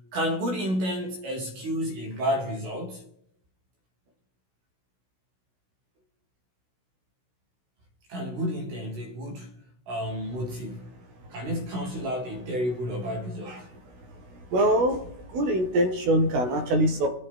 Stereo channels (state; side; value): late; left; 16 ms